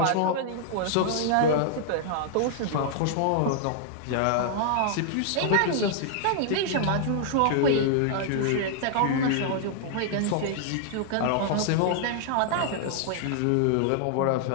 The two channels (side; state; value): both; different; correlation -0.01